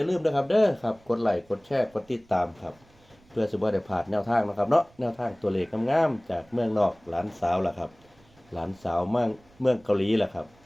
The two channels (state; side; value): noise; right; rumble, 30 dB below the sound